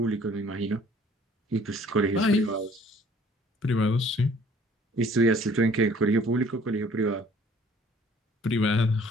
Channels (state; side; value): normal; both; correlation 0.55